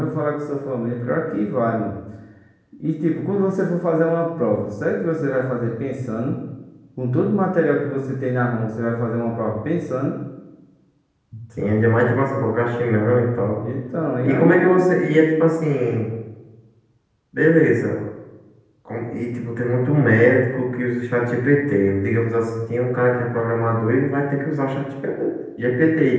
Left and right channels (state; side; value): identical; both; correlation 1.00